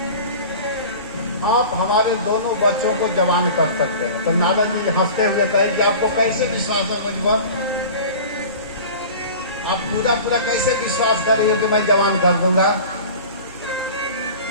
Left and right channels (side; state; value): both; inverted; correlation -0.38